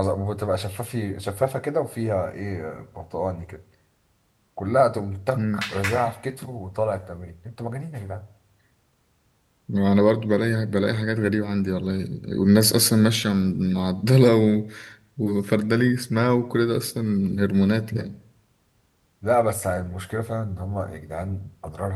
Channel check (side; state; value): both; identical; correlation 1.00